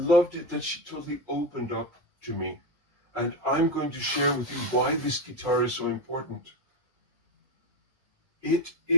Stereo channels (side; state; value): both; normal; correlation 0.12